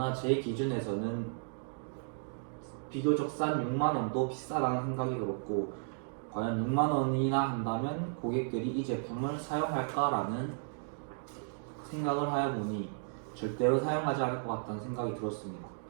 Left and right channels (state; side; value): silent; left; digital silence